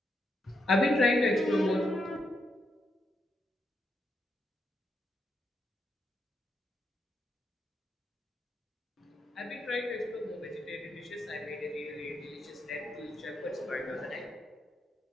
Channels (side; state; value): both; normal; correlation 0.81